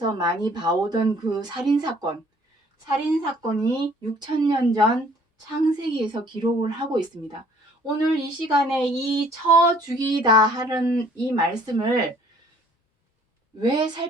많이 봐오던 그 살인사건이 6천년 전 창세기에서 기록을 하고 있습니다. 오늘 이 시간에 이 쳐 죽이다 하는 이 말씀을 왜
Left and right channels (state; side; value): normal; both; correlation 0.58